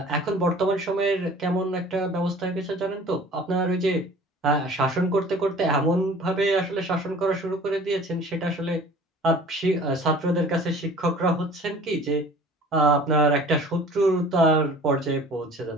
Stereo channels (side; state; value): both; normal; correlation 0.46